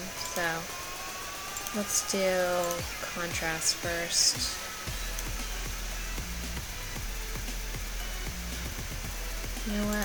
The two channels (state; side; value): identical; both; correlation 1.00